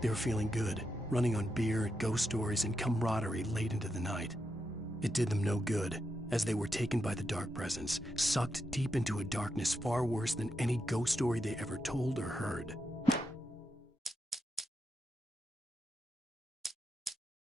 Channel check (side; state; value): both; normal; correlation 0.85